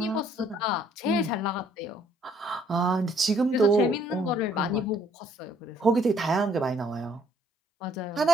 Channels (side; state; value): both; normal; correlation 0.64